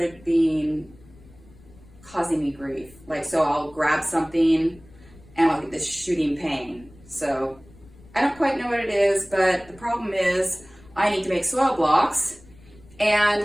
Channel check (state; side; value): noise; left; rumble, 24 dB below the sound